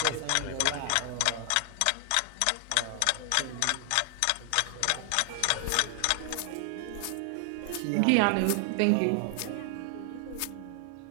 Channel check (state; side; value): different; both; correlation 0.00